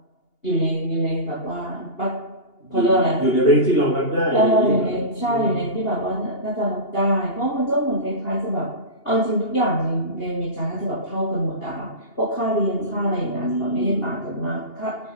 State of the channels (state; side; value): late; right; 2.8 ms